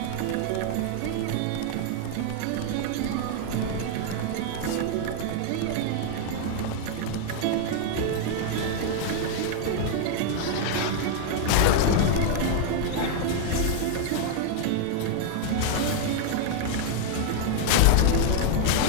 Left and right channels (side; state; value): both; different; correlation 0.00